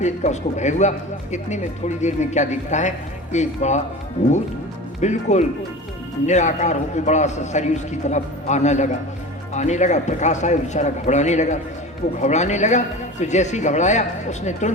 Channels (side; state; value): both; normal; correlation 0.33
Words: का उसको भय हुआ। इतने में थोड़ी देर में क्या दिखता है? एक बड़ा भूत बिल्कुल निराकार होकर बड़ा सा शरीर उसकी तरफ आने लगा, प्रकाश आया, बेचारा घबराने लगा। वो घबराने लगा तो जैसे ही घबराया उसने